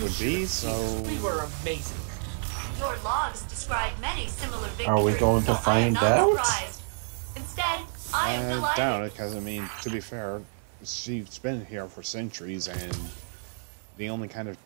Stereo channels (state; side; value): silent; left; 59 dB below the other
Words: be, so... We were amazing. Your logs describe many similar victories. Are we going to so I am find not out? surprised. Instead, I am I delighted. doubt it, because, I mean, to be fair, she's been here for centuries, and the only kind of